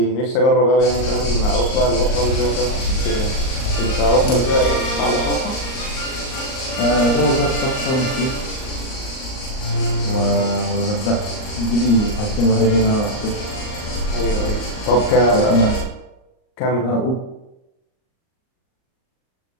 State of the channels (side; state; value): right; late; 38 ms